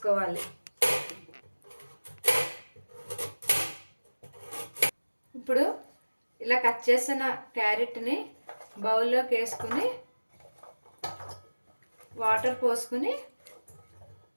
ఇప్పుడు ఇలా కట్ చేసిన క్యారెట్ని బౌల్లోకి వేసుకొని వాటర్ పోసుకొని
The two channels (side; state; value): both; inverted; correlation -1.00